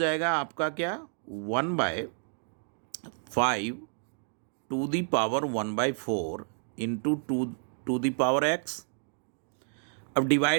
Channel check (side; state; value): left; silent; 58 dB below the other